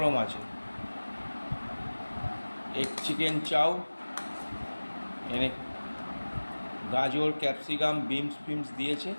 আছে। এগ চিকেন চাউ এনে গাজর, ক্যাপসিকাম, বিনস ফিমস দিয়েছে,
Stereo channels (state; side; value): inverted; both; correlation -1.00